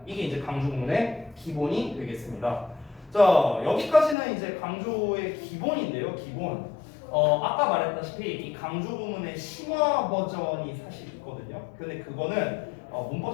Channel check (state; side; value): drops out; right; at 4.2 s